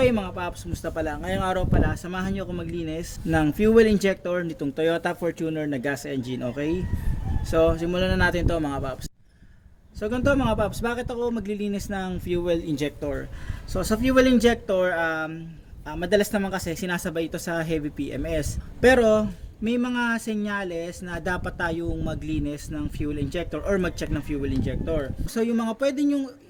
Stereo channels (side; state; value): both; identical; correlation 1.00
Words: mga paps, musta pala? Ngayong araw pala, samahan nyo ako maglinis ng fuel injector nitong Toyota Fortuner na gas engine, okay? So simulan na natin to mga paps. So ganito mga paps, bakit ako maglilinis ng fuel injector? So sa fuel injector, madalas naman kasi sinasabay ito sa heavy PMS. Pero may mga senyales na dapat tayong maglinis ng fuel injector or mag-check ng fuel injector. So yung mga pwede nyo